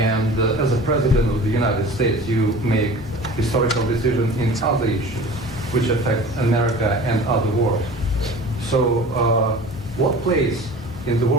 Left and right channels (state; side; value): normal; both; correlation 0.40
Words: as a president of the United States, you make historical decisions in other issues which affect America and other world. So what place in the